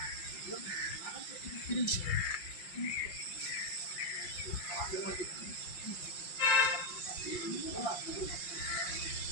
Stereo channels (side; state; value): right; late; 5.6 ms